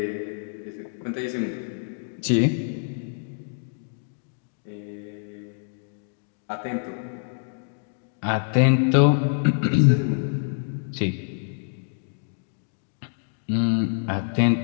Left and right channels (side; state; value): right; silent; digital silence